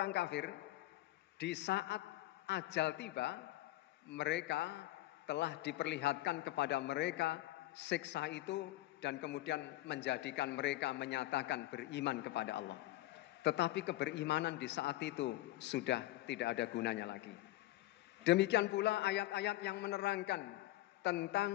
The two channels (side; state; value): right; quieter; 16.7 dB